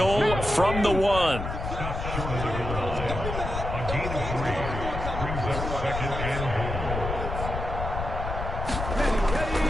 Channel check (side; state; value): left; noise; rumble, 5 dB below the sound